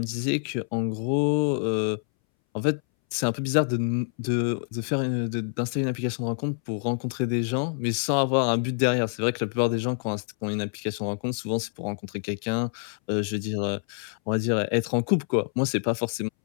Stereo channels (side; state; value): right; silent; 60 dB below the other